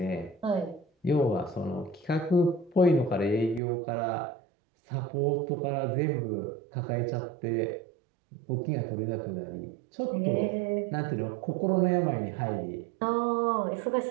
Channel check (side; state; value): left; drops out; at 3.6 s